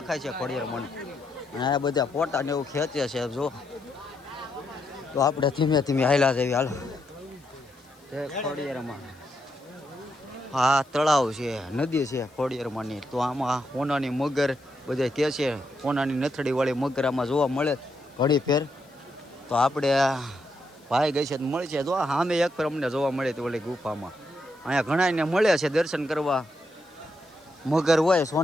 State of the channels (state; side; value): noise; left; hiss, 30 dB below the sound